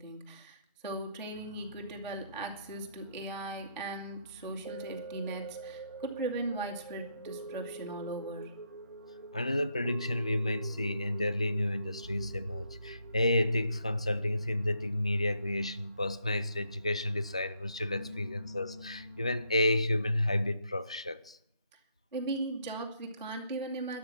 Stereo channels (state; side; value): inverted; both; correlation -0.75